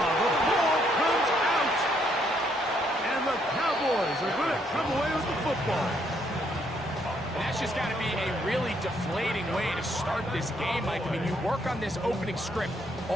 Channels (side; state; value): both; normal; correlation 0.71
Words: comes out. And the Cowboys are going to come away with the football. And that's just got to be a really deflating way to start this game, Mike. I mean, you work on this opening script